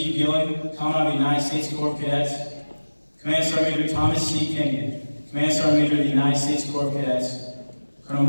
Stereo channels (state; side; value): inverted; both; correlation -1.00